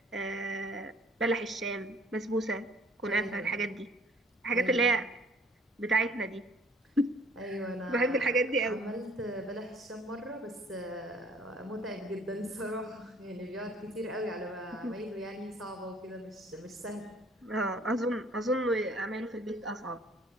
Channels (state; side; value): normal; both; correlation 0.56